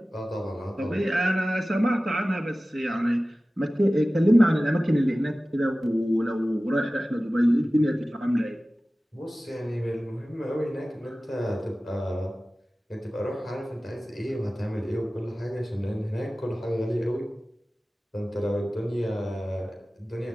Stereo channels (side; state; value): both; normal; correlation 0.96